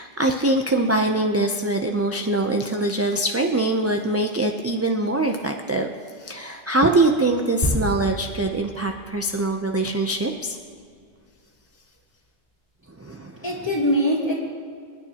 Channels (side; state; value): both; normal; correlation 0.09